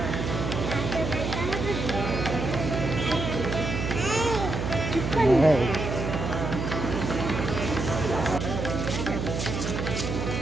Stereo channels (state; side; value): noise; right; hum, 3 dB below the sound